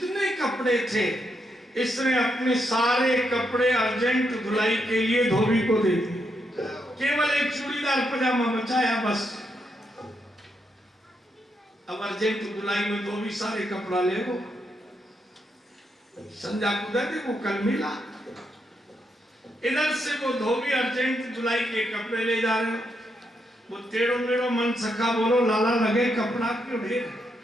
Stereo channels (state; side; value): normal; both; correlation 0.80